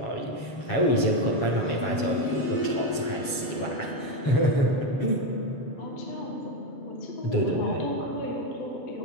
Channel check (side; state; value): right; late; 7.3 ms